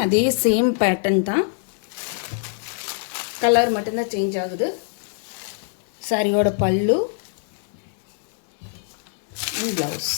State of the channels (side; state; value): right; silent; digital silence